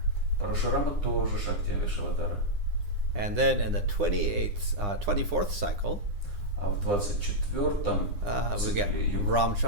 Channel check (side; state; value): left; late; 9.8 ms